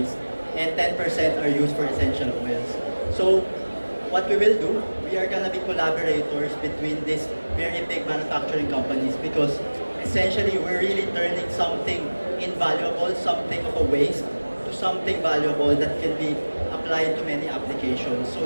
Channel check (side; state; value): both; inverted; correlation -1.00